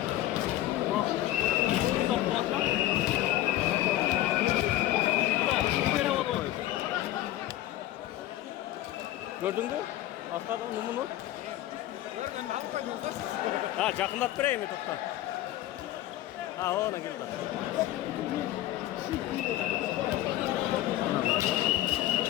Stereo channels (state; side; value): quieter; right; 14.4 dB